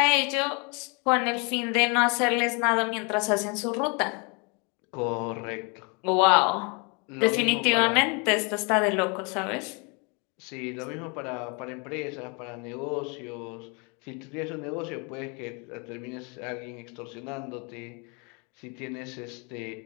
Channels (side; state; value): right; quieter; 32.5 dB